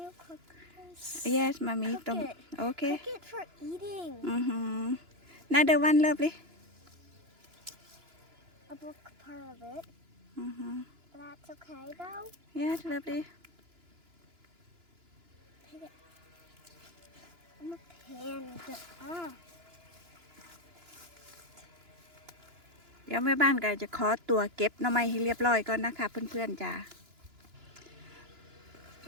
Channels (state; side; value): late; left; 2.9 ms